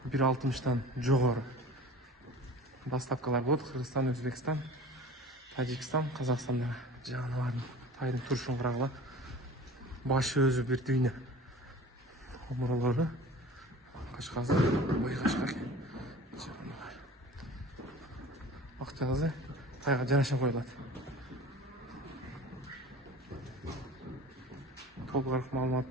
1.60-тан жогору. Доставкалар болот Кыргызстан, Өзбекстан, Тажикстан, Казакстандагы жаныбардын тайдын турушун карагыла. Башы өзү бир дүйнө. Омуролору кашкасы, бой кашка. Акчасы тайга жараша коюлат. Толугураак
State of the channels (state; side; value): normal; both; correlation 0.41